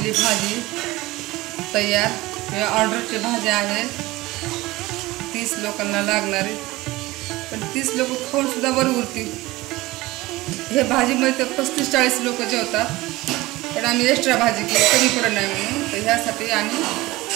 भाजी तयार. हे ऑर्डरची भाज्या आहेत, 30 लोकांना लागणारी. पण 30 लोक खाऊन सुद्धा बरं उरतील. हे भाजीमध्ये तर 35-40 लोक जेवतात. पण आम्ही एक्स्ट्रा भाजी केली कमी पडत नाही म्हणून. तर ह्यासाठी आम्ही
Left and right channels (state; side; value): quieter; left; 19.6 dB